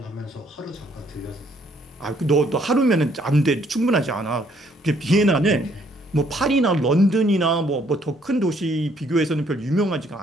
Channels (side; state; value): both; normal; correlation 0.66